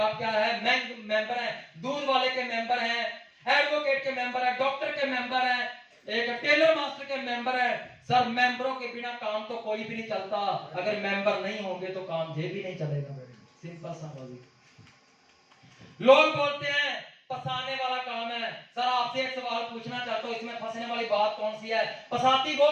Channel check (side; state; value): both; identical; correlation 1.00